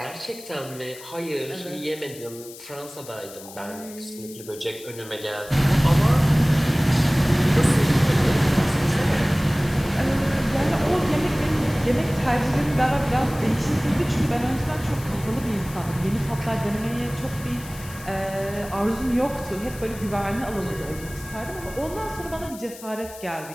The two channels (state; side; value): noise; left; hiss, 17 dB below the sound